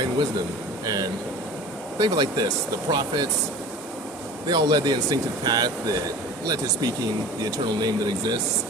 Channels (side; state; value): both; normal; correlation 0.39